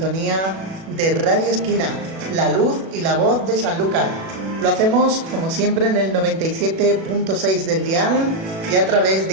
de Radio Esquina, la luz y la voz de Sanlúcar. Lo hacemos, como siempre, en el 97.6 del dial y a través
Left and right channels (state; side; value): late; left; 37 ms